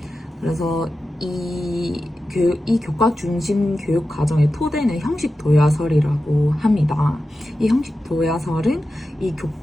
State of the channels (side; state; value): both; normal; correlation 0.92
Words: 그래서 이 교과 중심 교육 과정의 토대는 형식 도야설이라고 합니다. 이 형식 도야설은 이